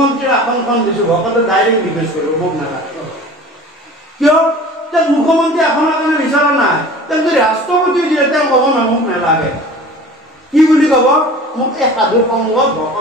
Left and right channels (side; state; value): both; normal; correlation 0.41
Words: আসনখন দিছো, ভকতে ডাইৰেক্ট ৰিকুৱেষ্ট কৰিব, মোক নালাগে। কিয়? যে মুখ্যমন্ত্ৰী আসনৰ কাৰণে বিচৰা নাই, তেওঁ যদি ৰাষ্ট্ৰপতি দিয়ে তেওঁ ক'ব না মোক নালাগে। কি বুলি ক'ব? মোক এই সাধু সংগত,